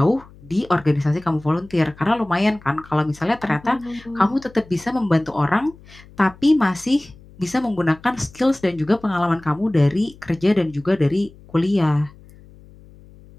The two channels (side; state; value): left; noise; hum, 23 dB below the sound